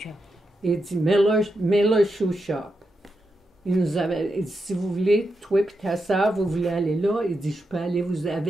Il dit, Miller Shoe Shop. Il dit, si vous voulez, toi et ta soeur, vous voulez aller là, il dit, je peux aller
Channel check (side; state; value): both; normal; correlation 0.86